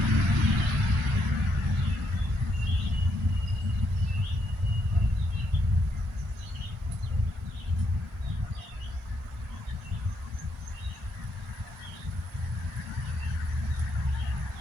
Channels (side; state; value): both; normal; correlation 0.76